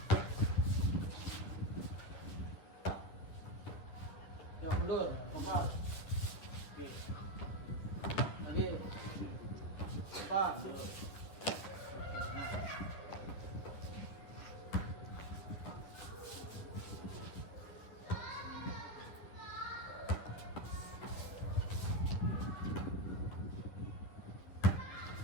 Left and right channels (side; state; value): right; late; 10 ms